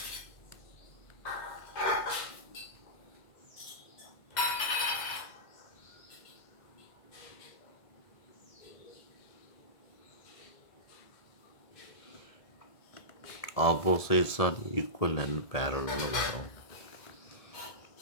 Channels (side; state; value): right; late; 1.7 ms